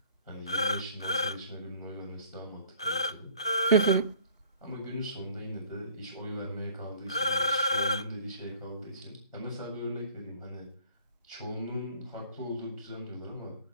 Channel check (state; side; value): inverted; both; correlation -0.51